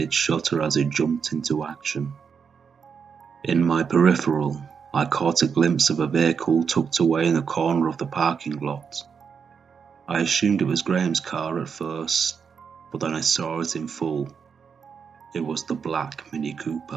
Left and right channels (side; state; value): left; quieter; 6.4 dB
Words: shutter as it jumped into action. In my peripheral, I caught a glimpse of a vehicle tucked away in the corner of the parking lot. I assumed it was Graham's car at first, but then I saw it in full. It was the black Mini